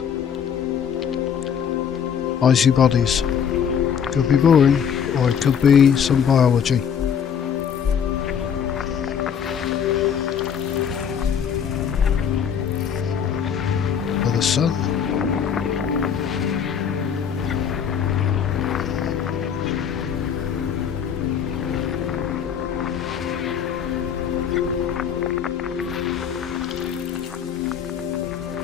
icy bodies. Could be boring, or it could be some biology. For the sun.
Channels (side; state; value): right; quieter; 7.7 dB